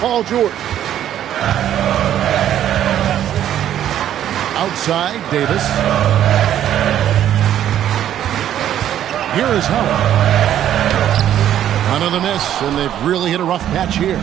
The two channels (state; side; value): quieter; left; 11.1 dB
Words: George. Outside, Davis. Here is Howard. Another miss, and they've really hit a rough patch here.